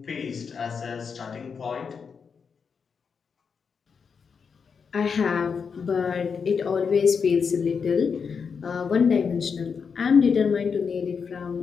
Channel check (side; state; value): right; quieter; 6.0 dB